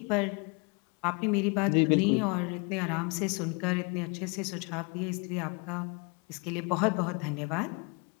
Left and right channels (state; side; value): quieter; right; 32.4 dB